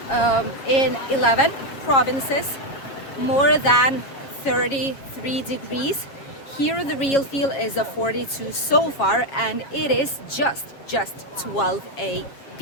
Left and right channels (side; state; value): right; late; 7.1 ms